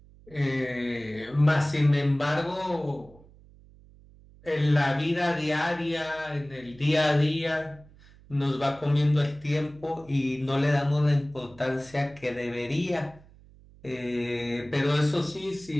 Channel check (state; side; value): noise; right; hum, 24 dB below the sound